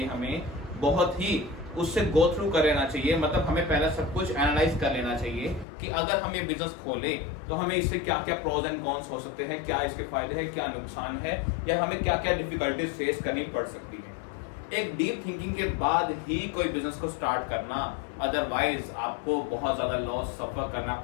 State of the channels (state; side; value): drops out; right; at 5.7 s